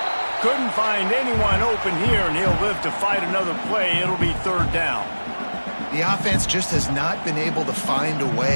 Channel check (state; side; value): inverted; both; correlation -1.00